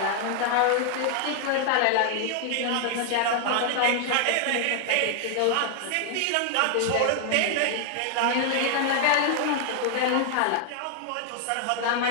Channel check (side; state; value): both; different; correlation 0.00